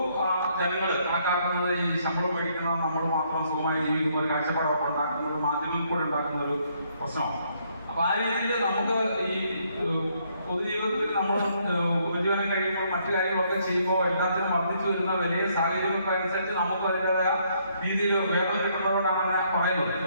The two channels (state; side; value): inverted; both; correlation -0.70